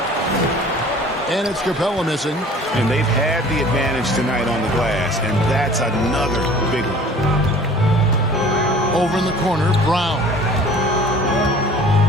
And it's Capella missing. And they've had the advantage tonight on the glass, and that's another big one. Over in the corner, Brown.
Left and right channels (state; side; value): normal; both; correlation 0.47